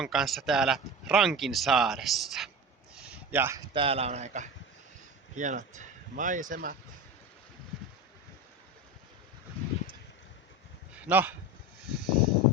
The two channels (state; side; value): normal; both; correlation 0.28